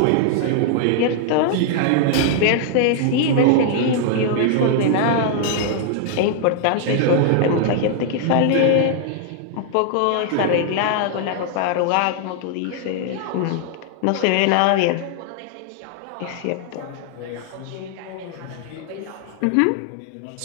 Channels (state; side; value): different; both; correlation 0.00